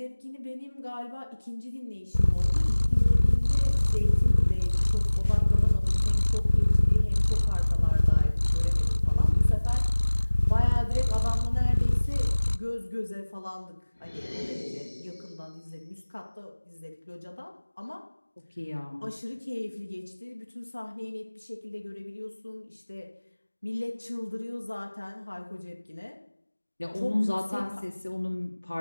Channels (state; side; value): inverted; both; correlation -1.00